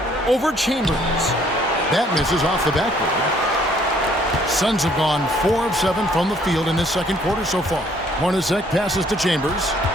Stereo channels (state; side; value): normal; both; correlation 0.63